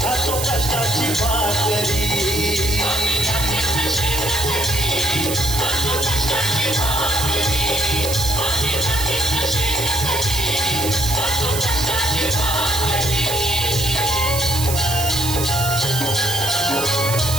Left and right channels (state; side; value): noise; right; hiss, 4 dB below the sound